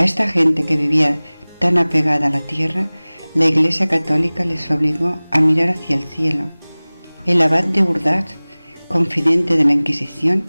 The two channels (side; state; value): both; inverted; correlation -1.00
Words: esta gente que vivía tan apegada a la tierra, la Iglesia Católica les obligó a mirar hacia el cielo. El abad de Urdash, confidente de la Inquisición,